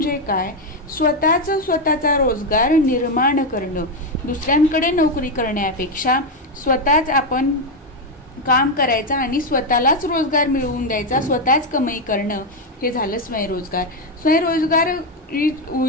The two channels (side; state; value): both; normal; correlation 0.06